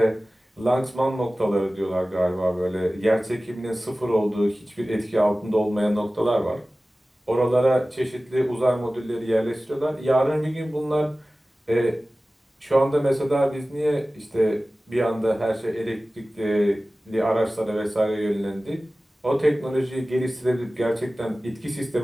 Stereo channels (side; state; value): both; normal; correlation 0.97